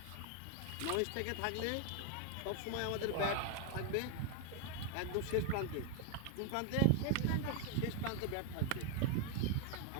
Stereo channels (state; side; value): different; both; correlation 0.01